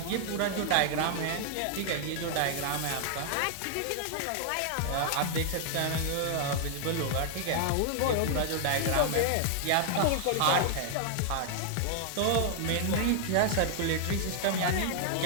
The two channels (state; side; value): different; both; correlation 0.00